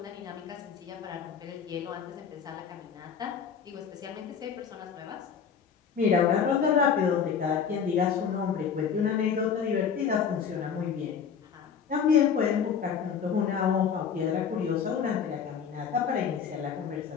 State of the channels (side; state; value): right; quieter; 7.0 dB